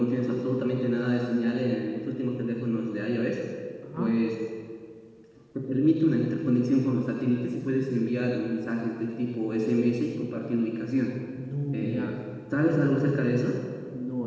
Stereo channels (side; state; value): both; identical; correlation 1.00